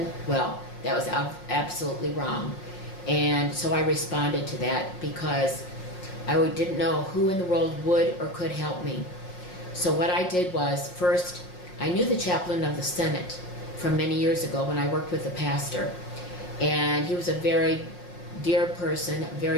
Well, that was absolutely wrong. And so I responded to that because I didn't know who in the world would or could help me. So what I did was, first, I knew the chaplain of the Senate from many years ago when I worked with the pastor. And he was a very dear person, a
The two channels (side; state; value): right; late; 5.5 ms